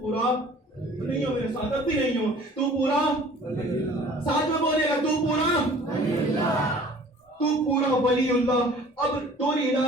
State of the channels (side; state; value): both; normal; correlation 0.49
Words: پورا نہیں ہو میرے ساتھ، اب بھی نہیں ہو، تو پورا ساتھ میں بولے گا تو پورا تو پورا ولی اللہ. اب دوری